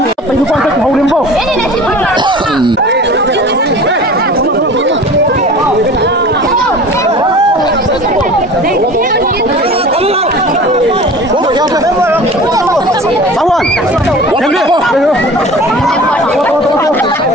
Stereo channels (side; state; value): both; normal; correlation 0.40